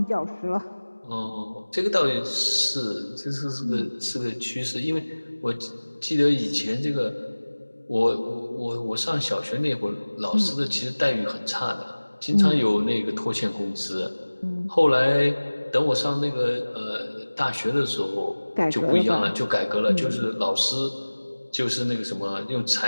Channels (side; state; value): both; inverted; correlation -1.00